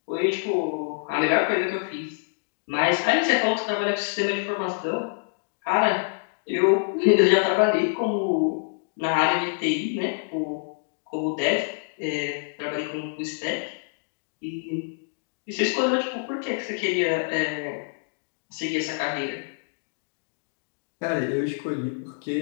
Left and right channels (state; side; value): silent; right; digital silence